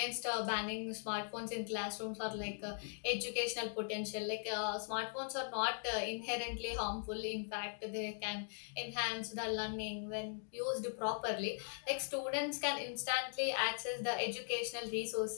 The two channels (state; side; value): silent; right; digital silence